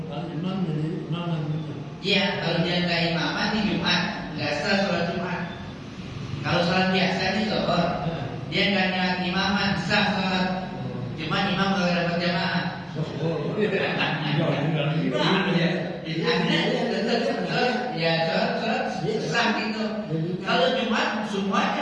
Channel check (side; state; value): both; identical; correlation 1.00